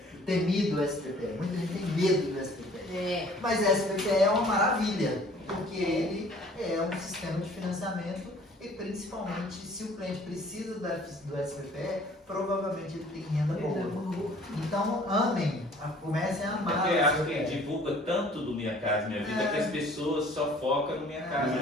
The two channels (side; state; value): both; normal; correlation 0.53